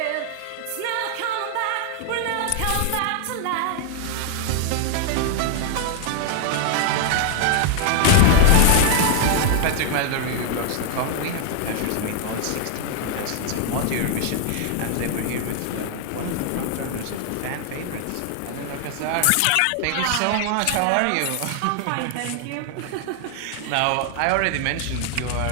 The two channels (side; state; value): both; different; correlation 0.00